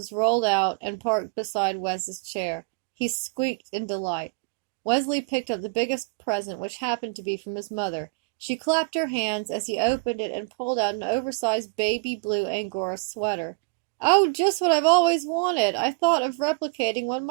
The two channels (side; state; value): left; quieter; 35.7 dB